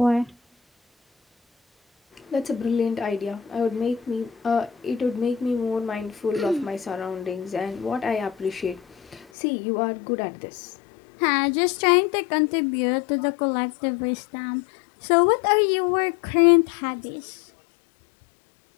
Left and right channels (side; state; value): right; drops out; at 9.2 s